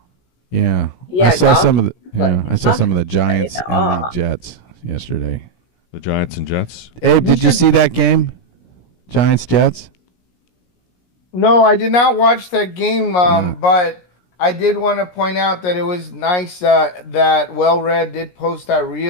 Yeah, Yeah, I saw golf- some of the. Yeah, like, I saw some of the Giants golf- and the Jets yesterday. The Giants and Jets. Abe, did you see that game? Giants Jets. No, I did not watch that game, but I did want to point out that it was nice that Well Read did post that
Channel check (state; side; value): late; right; 17 ms